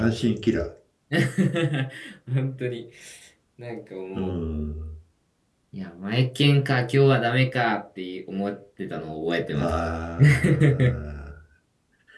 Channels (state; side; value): identical; both; correlation 1.00